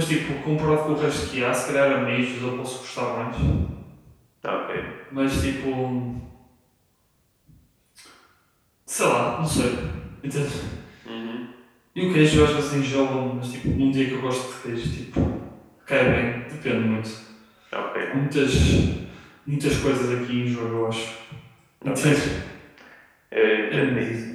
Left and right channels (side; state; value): both; identical; correlation 1.00